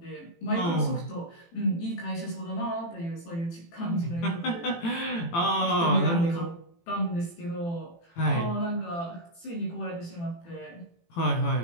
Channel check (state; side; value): late; right; 18 ms